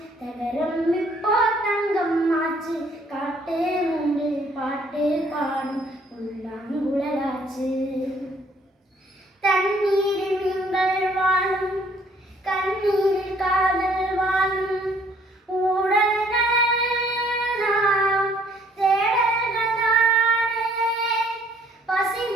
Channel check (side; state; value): both; normal; correlation 0.62